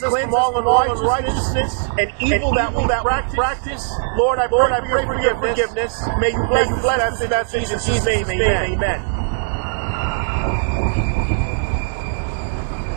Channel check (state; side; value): silent; left; digital silence